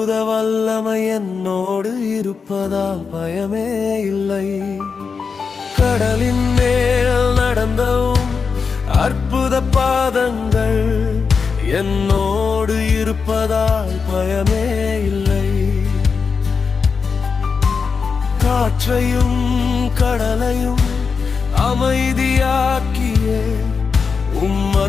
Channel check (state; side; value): quieter; right; 5.3 dB